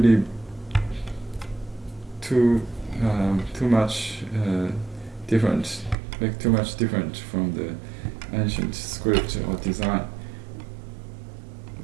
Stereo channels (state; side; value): drops out; left; at 6.0 s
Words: too much make too much different from the ancient script or design.